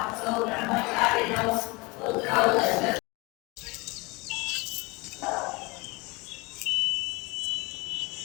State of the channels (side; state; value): right; quieter; 25.6 dB